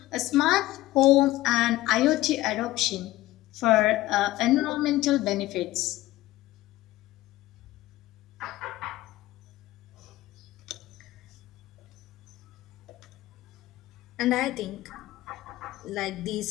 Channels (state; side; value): quieter; right; 16.7 dB